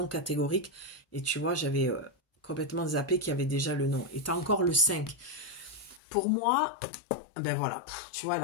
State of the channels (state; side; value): drops out; right; at 6.0 s